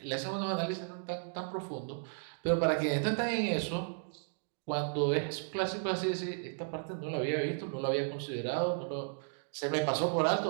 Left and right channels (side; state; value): left; silent; digital silence